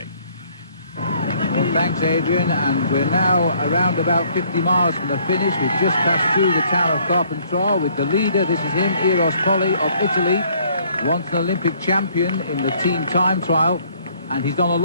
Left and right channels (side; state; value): both; inverted; correlation -0.62